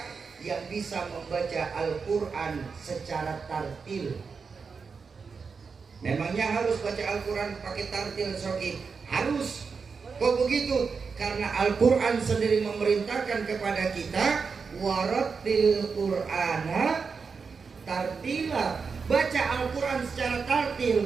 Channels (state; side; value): quieter; left; 5.3 dB